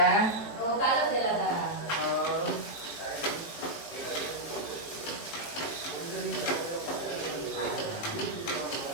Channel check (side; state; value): right; late; 18 ms